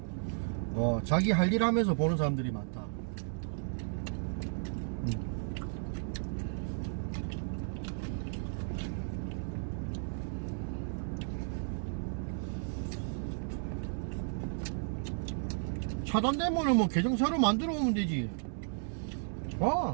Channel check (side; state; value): left; silent; digital silence